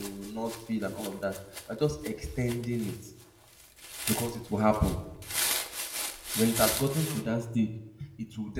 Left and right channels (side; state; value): both; identical; correlation 1.00